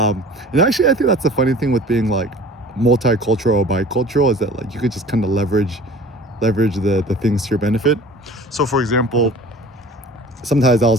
actually, I think that's the funny thing with being like multicultural or bicultural, is that like you could just kind of leverage the things to your benefit. So for example, sometimes I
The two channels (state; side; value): normal; both; correlation 0.45